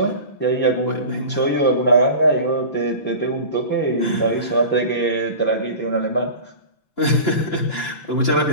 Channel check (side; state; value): right; late; 5.9 ms